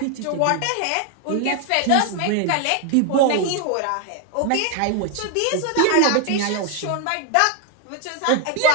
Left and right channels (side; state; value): both; different; correlation 0.01